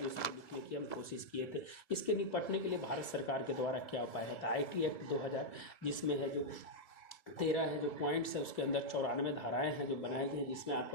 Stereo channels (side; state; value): right; late; 2.0 ms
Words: इसको लिखने की हम कोशिश किए थे। इसके निपटने के लिए भारत सरकार के द्वारा क्या उपाय है, IT एक्ट 2000, जिसमें है जो 13 है जो पॉइंट्स है, उसके अंदर 94 धाराएं हैं जो बनाई गई हैं, जिसमें